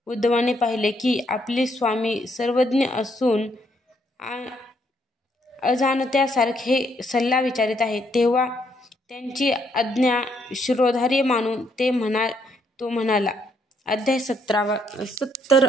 उद्धवाने पाहिले की आपले स्वामी सर्वज्ञ असून अजाणत्यासारखे सल्ला विचारित आहेत. तेव्हा त्यांची आज्ञा शिरोधार्य मानून तो म्हणाला. अध्याय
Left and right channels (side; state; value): both; normal; correlation 0.72